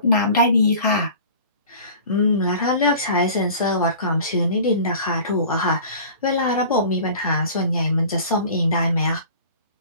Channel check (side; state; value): both; inverted; correlation -0.42